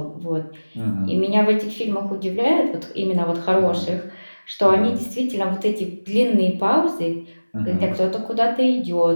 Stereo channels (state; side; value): inverted; both; correlation -1.00